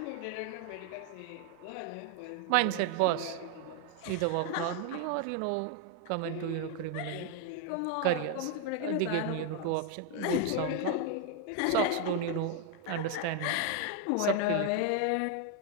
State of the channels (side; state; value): both; different; correlation 0.01